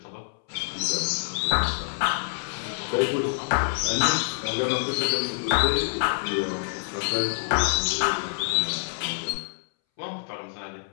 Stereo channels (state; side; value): silent; right; 61 dB below the other